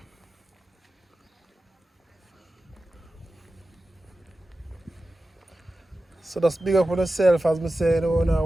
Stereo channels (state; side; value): normal; both; correlation 0.94